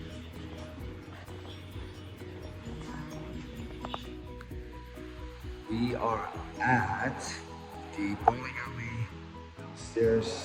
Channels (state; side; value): identical; both; correlation 1.00